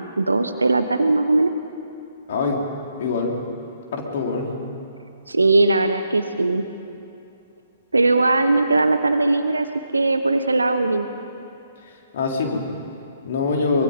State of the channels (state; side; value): inverted; both; correlation -0.82